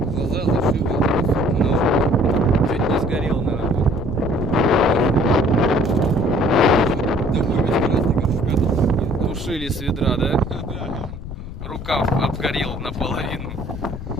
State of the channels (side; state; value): left; noise; rumble, 9 dB below the sound